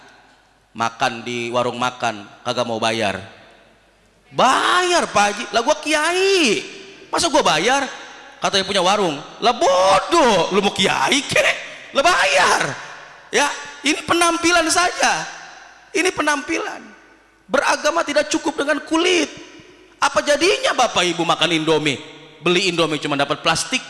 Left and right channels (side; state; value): both; identical; correlation 1.00